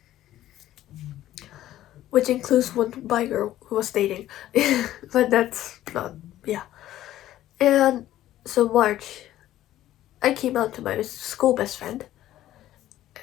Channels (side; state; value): right; quieter; 13.6 dB